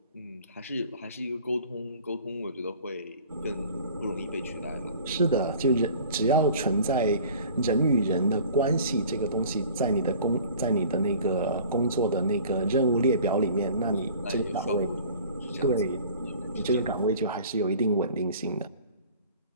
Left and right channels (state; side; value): inverted; both; correlation -0.46